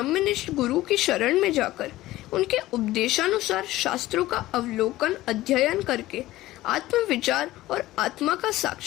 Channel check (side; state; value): right; quieter; 16.6 dB